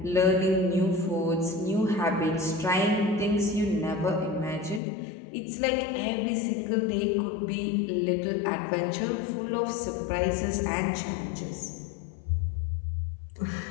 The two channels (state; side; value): drops out; right; at 4.8 s